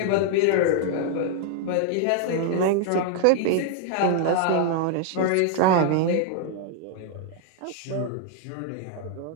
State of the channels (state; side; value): different; both; correlation 0.00